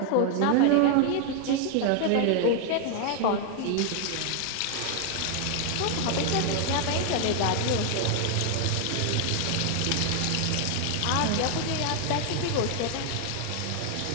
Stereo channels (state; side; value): different; both; correlation 0.00